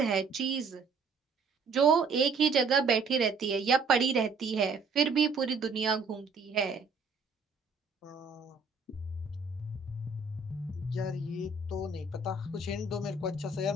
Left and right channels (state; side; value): quieter; left; 4.3 dB